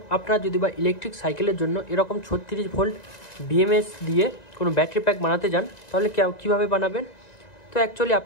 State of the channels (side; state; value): right; late; 1.9 ms